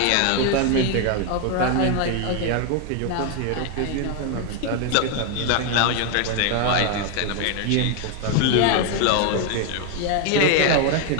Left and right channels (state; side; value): different; both; correlation 0.01